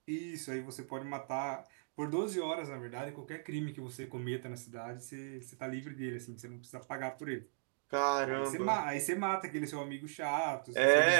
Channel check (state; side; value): silent; left; digital silence